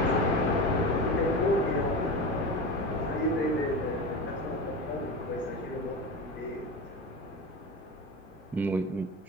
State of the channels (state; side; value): normal; both; correlation 0.25